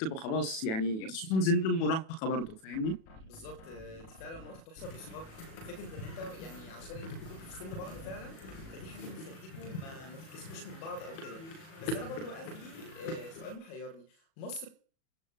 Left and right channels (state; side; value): late; right; 37 ms